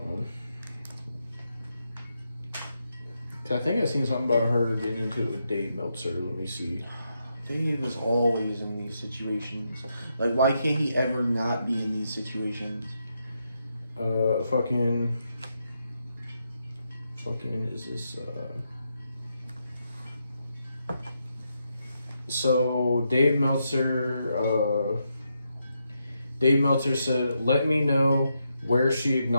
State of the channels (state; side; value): inverted; both; correlation -0.82